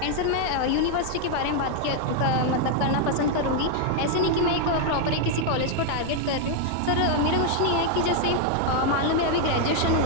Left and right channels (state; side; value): different; both; correlation 0.00